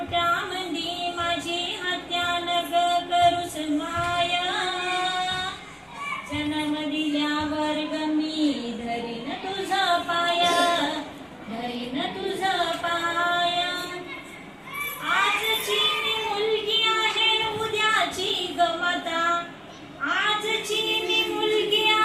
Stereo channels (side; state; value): both; identical; correlation 1.00